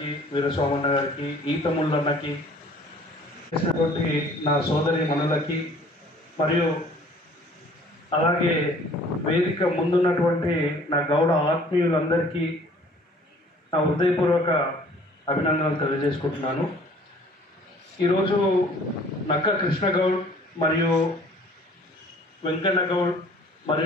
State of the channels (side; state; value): both; normal; correlation 0.53